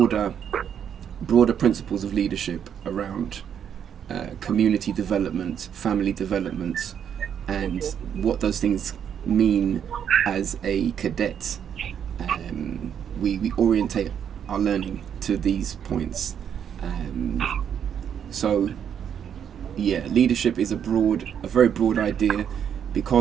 principles of leadership around community development, family development, and what those things mean as a cadet. We orientate our learning to these points. So leadership is a very broad idea,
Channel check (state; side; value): quieter; left; 8.5 dB